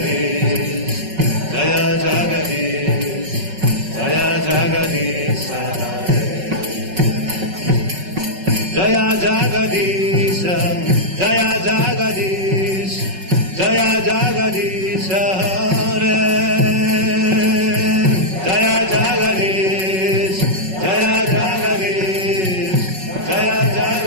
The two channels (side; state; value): left; late; 5.4 ms